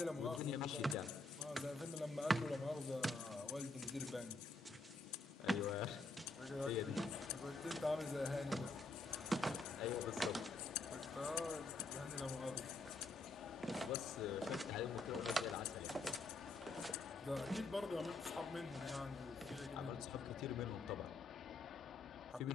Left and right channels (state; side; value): quieter; right; 3.2 dB